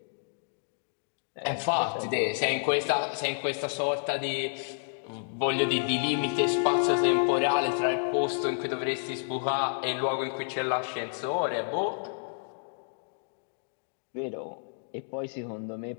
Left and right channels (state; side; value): silent; right; digital silence